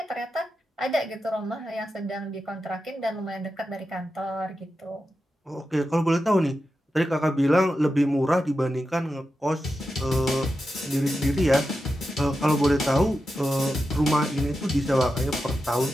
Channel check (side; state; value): both; normal; correlation 0.90